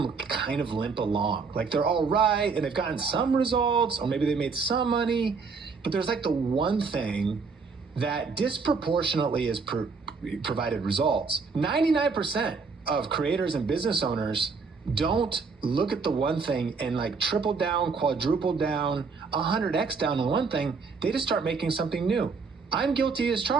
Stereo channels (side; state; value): left; quieter; 4.9 dB